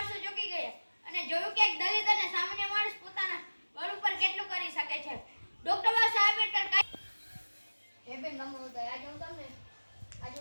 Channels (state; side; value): inverted; both; correlation -1.00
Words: ચોંકી ગયા અને જોયું કે એક દલિત અને સામાન્ય માણસ પોતાના બળ ઉપર કેટલું કરી શકે છે. ડોક્ટર બાબાસાહેબ આંબેડકર હે બેન નમો ઉદય. આજે હું તમને